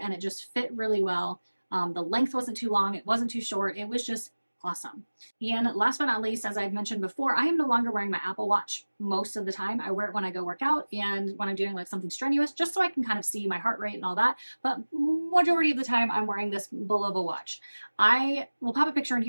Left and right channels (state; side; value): inverted; both; correlation -1.00